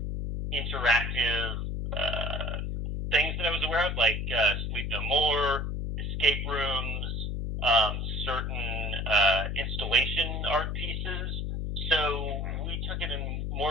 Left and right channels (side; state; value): left; noise; hum, 2 dB below the sound